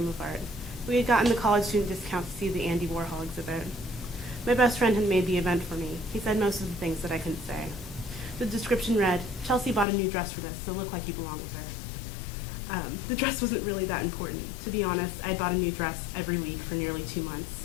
of Art. We had gotten the college student discount to see the Andy Warhol exhibit. My best friend had made the event for me. He said most of the things that I couldn't say. The description read, "Chelsea bought a new dress for this, so look like you belong with her." The dress wasn't really that important. To be honest, I'd bought a new dress every week for nearly 2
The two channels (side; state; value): right; drops out; at 9.9 s